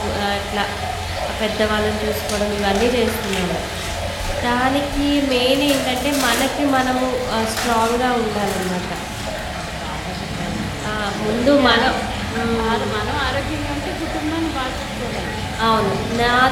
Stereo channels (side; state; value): both; identical; correlation 1.00